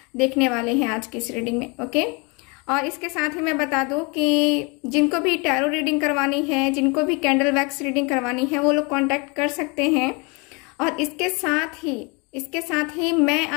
देखने वाले हैं आज की इस रीडिंग में। ओके, और इसके साथ ही मैं बता दूं कि जिनको भी टैरो रीडिंग करवानी है, जिनको भी कैंडल वैक्स रीडिंग करवानी है, वो लोग कांटेक्ट कर सकते हैं। और इसके साथ ही मैं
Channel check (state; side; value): quieter; right; 30.1 dB